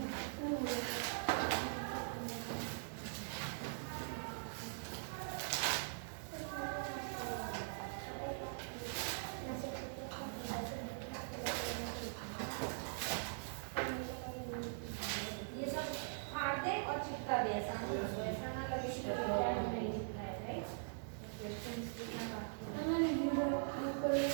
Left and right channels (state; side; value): silent; left; digital silence